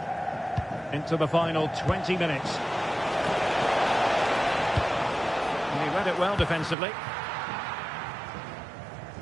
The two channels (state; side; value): drops out; left; at 6.8 s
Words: Into the final 20 minutes. And he read it well defensively.